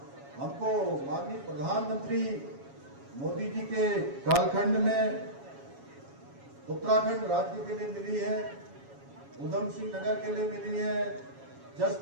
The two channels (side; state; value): left; late; 7.2 ms